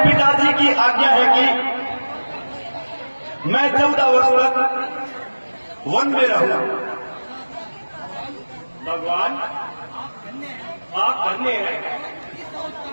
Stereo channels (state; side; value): inverted; both; correlation -1.00